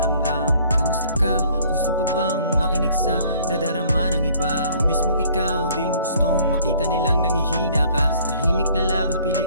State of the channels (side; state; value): both; inverted; correlation -0.58